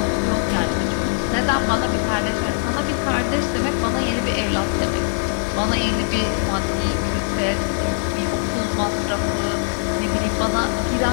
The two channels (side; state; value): right; silent; 57 dB below the other